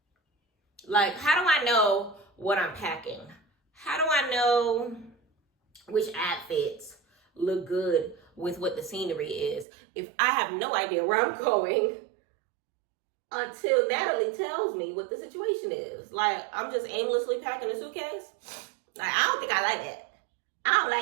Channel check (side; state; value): left; drops out; at 9.7 s